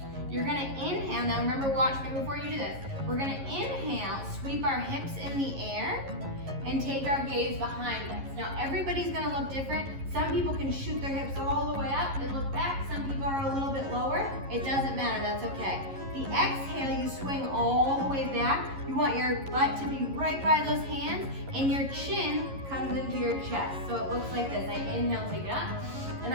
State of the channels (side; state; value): left; late; 11 ms